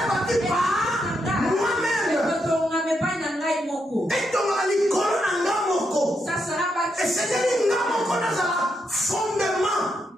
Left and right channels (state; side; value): normal; both; correlation 0.81